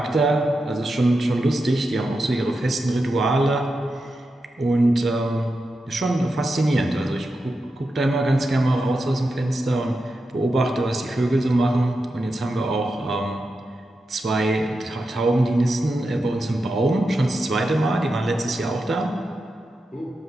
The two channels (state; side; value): normal; both; correlation 0.89